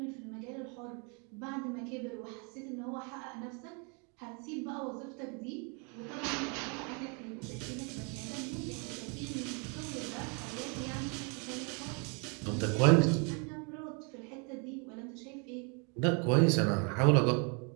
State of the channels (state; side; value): quieter; left; 35.1 dB